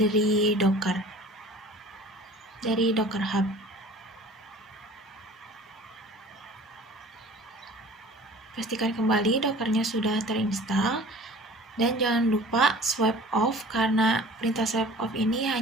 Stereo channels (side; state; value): both; normal; correlation 0.45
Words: Docker, dari Docker Hub. Pastikan kembali Dockernya sudah terinstall dan jangan lupa swipe off karena perintah swipe off ini